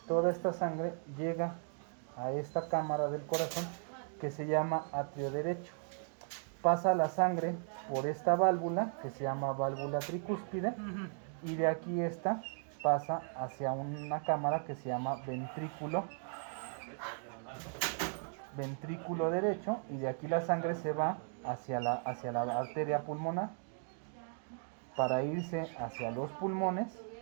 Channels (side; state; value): left; silent; 53 dB below the other